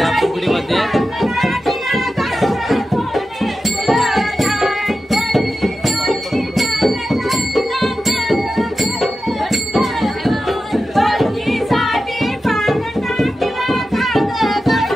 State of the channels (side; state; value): both; normal; correlation 0.92